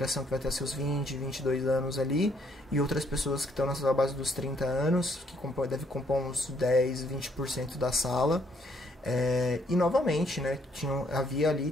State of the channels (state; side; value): normal; both; correlation 0.69